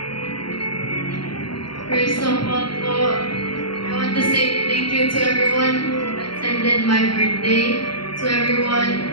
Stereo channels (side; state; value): right; late; 0.73 ms